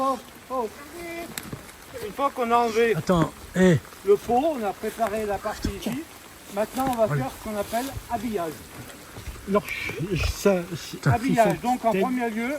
qu'on a enlevé le pot, on a préparé la partie ici. Maintenant, on va faire ce qu'on appelle habillage. Alors, Habillage, donc en premier lieu,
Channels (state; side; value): identical; both; correlation 1.00